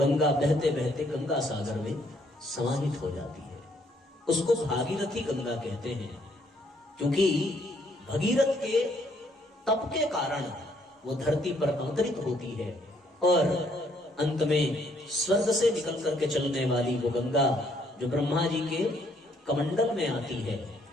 बहते बहते गंगा सागर में समाहित हो जाती है। उसको भागीरथी गंगा कहते हैं क्योंकि भगीरथ के तप के कारण वो धरती पर अवतरित होती है और अंत में स्वर्ग से निकल करके चलने वाली वो गंगा जो ब्रह्मा जी के कमंडल में आती है,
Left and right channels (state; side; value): normal; both; correlation 0.68